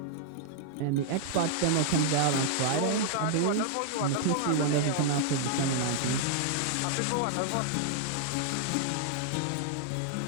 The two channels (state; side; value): different; both; correlation -0.01